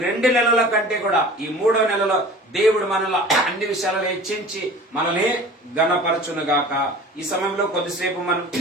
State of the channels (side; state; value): both; normal; correlation 0.41